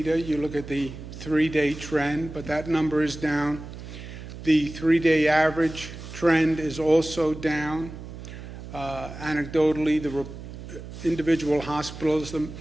You look at the 3-day trend, but that number is down. The 3-day average trend is also down. Anecdotally, the individual hospitals, the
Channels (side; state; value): right; noise; hum, 12 dB below the sound